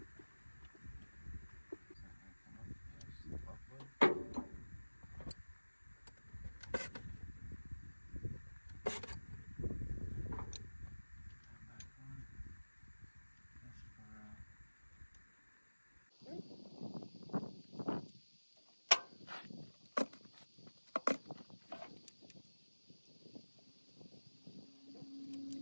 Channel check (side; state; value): both; inverted; correlation -1.00